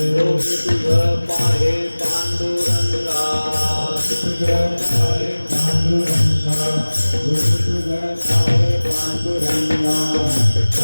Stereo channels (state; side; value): inverted; both; correlation -1.00